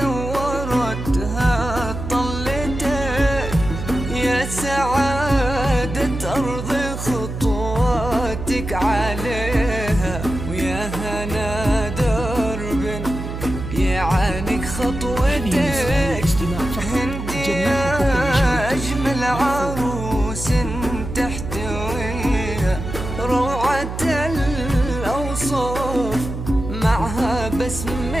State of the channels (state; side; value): noise; right; hum, 7 dB below the sound